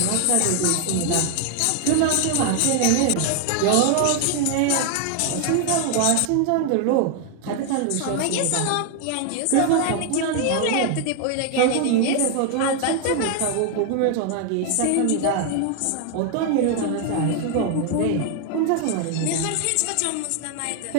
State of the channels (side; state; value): both; different; correlation 0.00